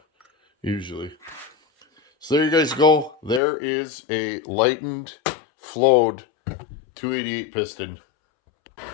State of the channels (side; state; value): right; drops out; at 3.4 s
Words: usually. So there you guys go. There is a lightened, flowed 288 piston.